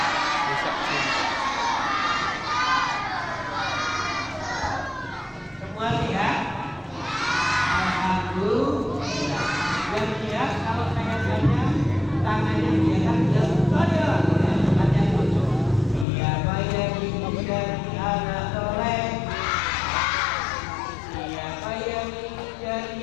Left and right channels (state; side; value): drops out; right; at 16.1 s